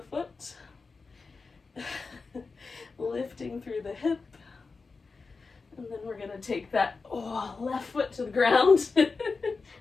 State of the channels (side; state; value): right; quieter; 4.4 dB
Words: foot. Lifting through the hip. And then we're going to take that left foot to the ground,